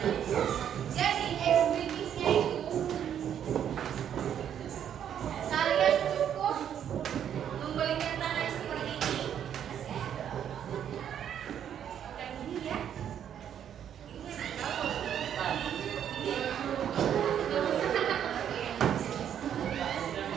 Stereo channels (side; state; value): left; quieter; 9.4 dB